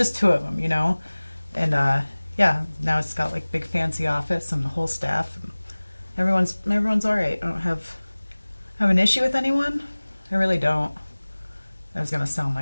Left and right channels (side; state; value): both; inverted; correlation -1.00